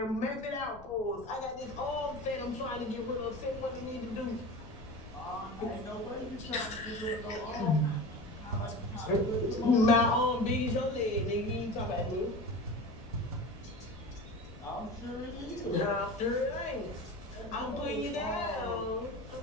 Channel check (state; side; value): noise; left; rumble, 18 dB below the sound